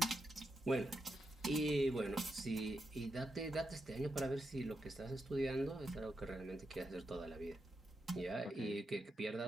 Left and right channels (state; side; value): normal; both; correlation 0.86